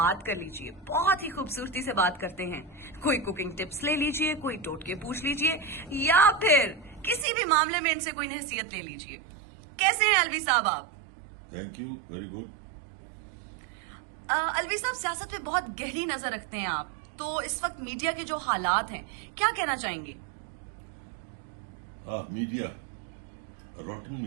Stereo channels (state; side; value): drops out; left; at 7.2 s